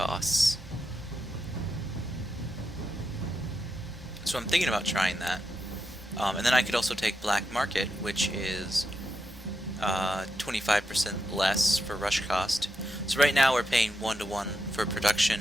So I'm thinking about trying that. And then I could also take black market, which is 25% less for rush cost. So right now we're paying 1-to-1 for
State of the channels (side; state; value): both; normal; correlation 0.85